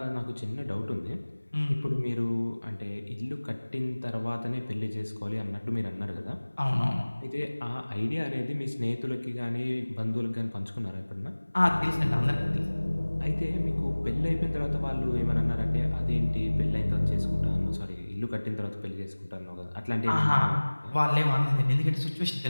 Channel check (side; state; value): both; inverted; correlation -1.00